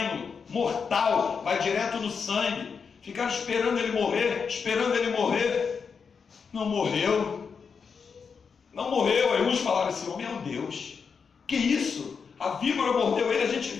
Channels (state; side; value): quieter; right; 5.9 dB